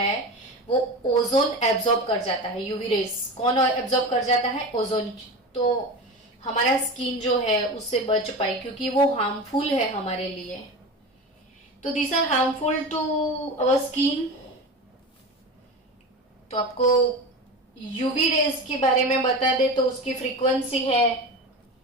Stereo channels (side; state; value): both; normal; correlation 0.27